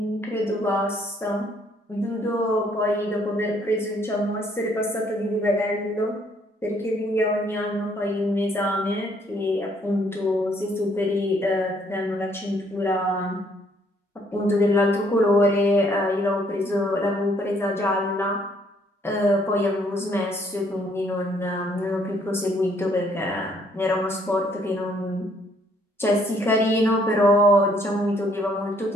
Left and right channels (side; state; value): both; normal; correlation 0.66